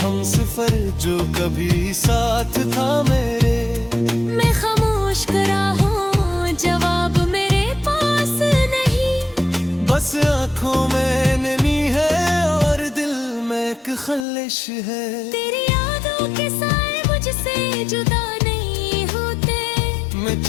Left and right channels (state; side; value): drops out; right; at 14.2 s